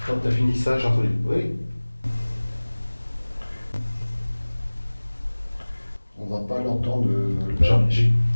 Quand tu as fini ça, j'ai entendu. Oui. On va pas l'entendre.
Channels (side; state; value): both; inverted; correlation -1.00